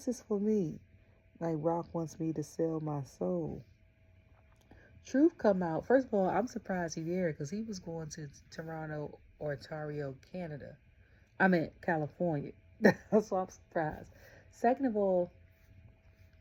is for me. Like, Rock wants me to sell my soul. Truth come out. First of all, I'm surprised he there because he was going to Toronto or Ontario, Canada. I mean, California. That's why I'm surprised. Second of all,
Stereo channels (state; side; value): identical; both; correlation 1.00